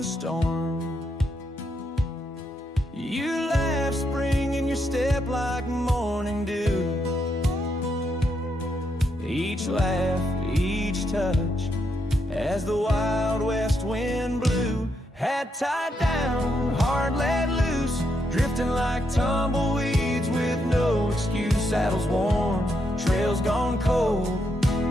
storm. You laughed spring in your step like morning dew. Each laugh, each touch, as the wild west wind blew, had tied down, heart let loose, drifting like tumbleweeds with no excuse. Saddles worn, trails gone cold,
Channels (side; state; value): both; normal; correlation 0.79